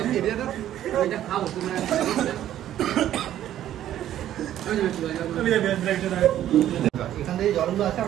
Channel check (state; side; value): quieter; left; 11.9 dB